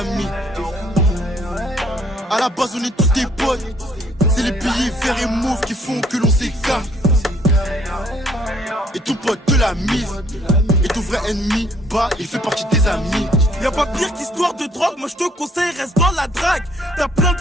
À la base on est tous des potes, c'est les billets verts et mauves qui font que l'on s'écarte. Et ton pote te l'a mise, et ton vrai ennemi, bah il fait partie des amis. Y'a pas pire qu'histoire de drogue, moi je te conseille, reste dans la drague. T'as plein de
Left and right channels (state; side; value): normal; both; correlation 0.64